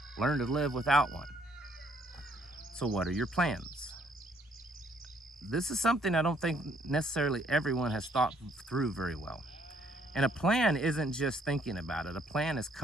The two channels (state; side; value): normal; both; correlation 0.67